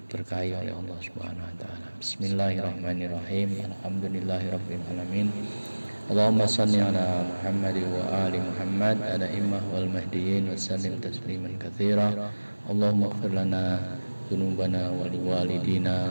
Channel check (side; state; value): both; inverted; correlation -1.00